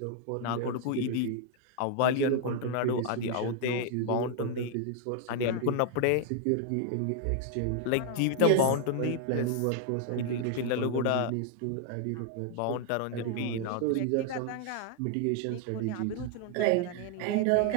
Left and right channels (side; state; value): both; different; correlation 0.00